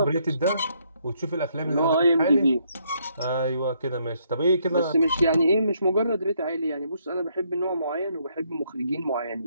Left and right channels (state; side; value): inverted; both; correlation -0.71